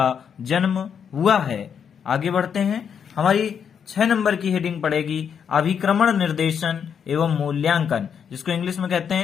जन्म हुआ है। आगे बढ़ते हैं। हमारी 6 नंबर की हेडिंग पड़ेगी अभिक्रमण निर्देशन एवं मूल्यांकन, जिसको इंग्लिश में कहते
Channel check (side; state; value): right; quieter; 7.5 dB